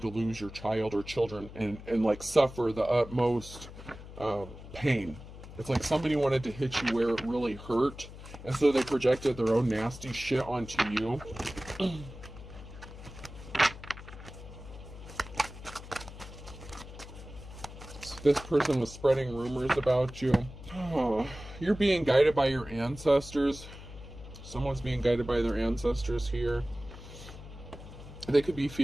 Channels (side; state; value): left; noise; hum, 14 dB below the sound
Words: lose your child or children and like, suffer the utmost pain. It's like somebody wanted to hit you where it really hurt, and so they projected their own nasty shit onto you. So this person was spreading rumors about you. Oh, you're being guided by your ancestors. Someone's being guided by their ancestors here. They could be